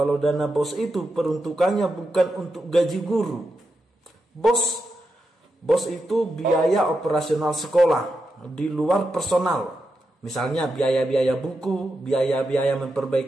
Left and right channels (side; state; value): both; normal; correlation 0.87